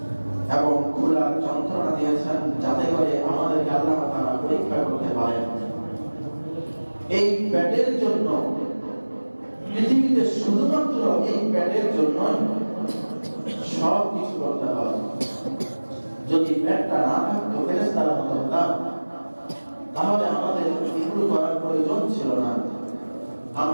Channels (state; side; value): inverted; both; correlation -1.00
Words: এবং ক্ষুধার যন্ত্রণা দিয়েছেন, যাতে করে আমাদেরকে আল্লাহ তাআলা পরীক্ষা করতে পারেন। এই পেটের জন্য পৃথিবীতে শুধুমাত্র এই পেটের জন্য সব কিছু করতে হয়। যদি পেটটা না থাকতো ফেরেশতার মতো হতাম, তাহলে আমাদের এগুলো করার প্রয়োজন ছিল না।